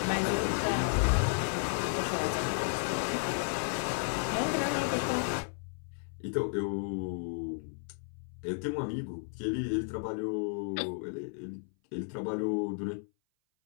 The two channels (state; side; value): silent; right; 56 dB below the other